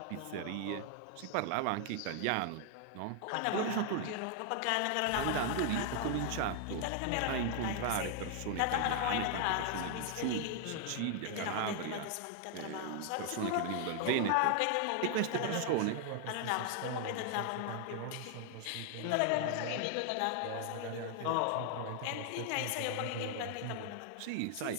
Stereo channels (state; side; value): different; both; correlation 0.00